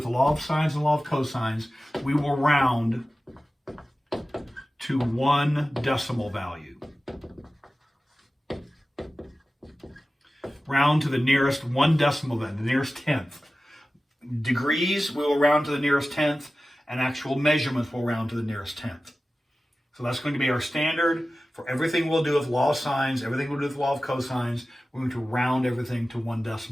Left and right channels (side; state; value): both; normal; correlation 0.95